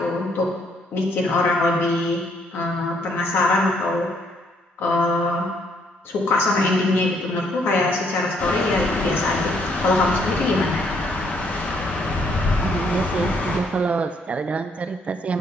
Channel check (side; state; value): both; normal; correlation 0.69